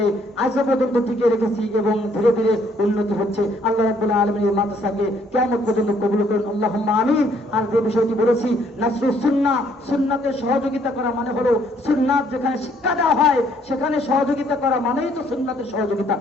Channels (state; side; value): normal; both; correlation 0.65